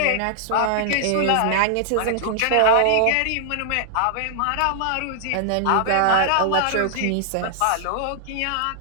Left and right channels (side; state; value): both; different; correlation -0.01